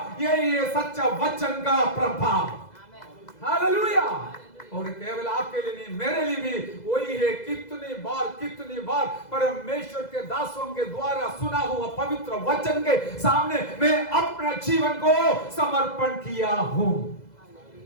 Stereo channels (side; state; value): right; late; 2.0 ms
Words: यही है सच्चा वचन का प्रभाव। हालेलुया। और केवल आपके लिए नहीं, मेरे लिए भी वही है। कितनी बार परमेश्वर के दासों के द्वारा सुना हुआ पवित्र वचन के सामने मैं अपना जीवन को समर्पण किया हूं।